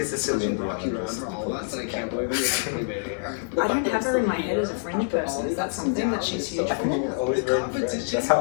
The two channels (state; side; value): silent; right; 61 dB below the other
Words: is Celine Dion. I don't have her in my head as a fringe person. Is that something that she's huge I for? think it's always very French. That's how